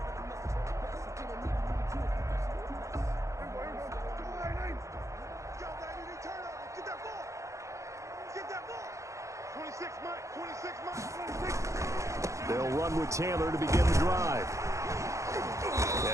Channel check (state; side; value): late; left; 0.15 ms